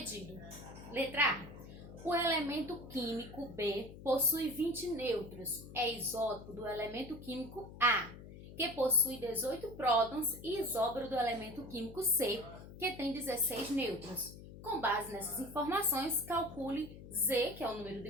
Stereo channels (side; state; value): left; noise; hum, 15 dB below the sound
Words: Letra A. O elemento químico B possui 20 nêutrons. É isótopo do elemento químico A, que possui 18 prótons, e isóbaro do elemento químico C, que tem 16 nêutrons. Com base nessas informações, calcule Z, que é o número de